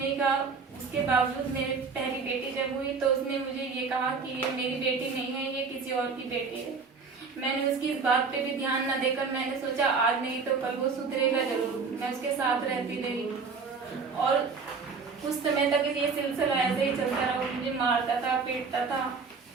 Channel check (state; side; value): quieter; left; 4.9 dB